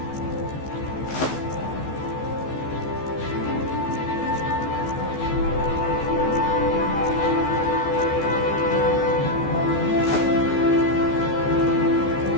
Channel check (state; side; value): late; right; 14 ms